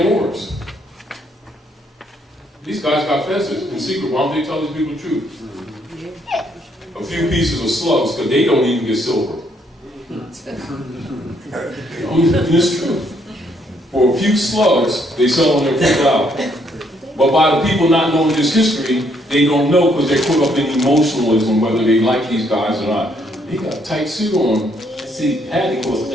Moors. These guys got fezzes in secret. Why don't they tell these people the truth? A few pieces of slugs, because they don't even get silver. It's true. For a few slugs, they sell them their food out. But by the people not knowing this history, they don't know because they're caught up in emotionalism, whether they like these guys or not. He got a tight suit on. See, Hattie costs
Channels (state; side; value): normal; both; correlation 0.70